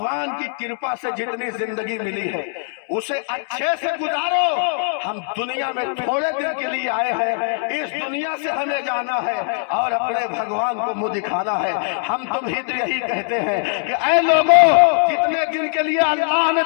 کی کرپا سے جتنی زندگی ملی ہے اسے اچھے سے گزارو. ہم دنیا میں تھوڑے دن کے لیے آئے ہیں, اس دنیا سے ہمیں جانا ہے اور اپنے بھگوان کو منہ دکھانا ہے. ہم تمہیں تو یہی کہتے ہیں کہ اے لوگوں, جتنے دن کے لیے اللہ نے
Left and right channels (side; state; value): right; silent; digital silence